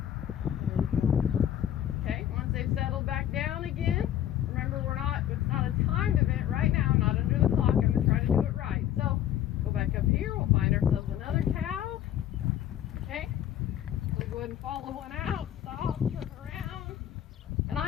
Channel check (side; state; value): right; quieter; 11.1 dB